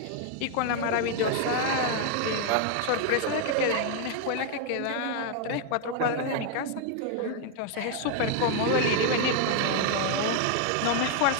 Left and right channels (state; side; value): different; both; correlation 0.00